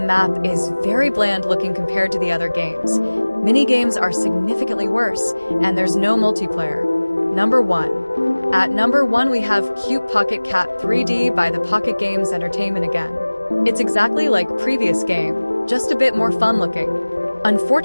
is very bland looking compared to the other games. Mini-games are significantly worse, and there's no multiplayer. Number 1. At number 1, we have Cute Pocket Cat 3D by the Pocket Games Entertainment again. It's exactly like previous game, just a bit more fun looking.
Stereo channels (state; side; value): inverted; both; correlation -1.00